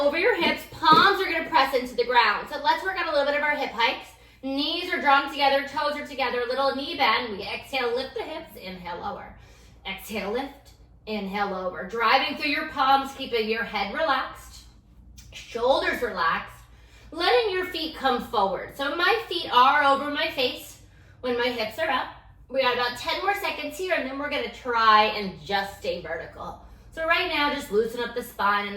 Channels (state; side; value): identical; both; correlation 1.00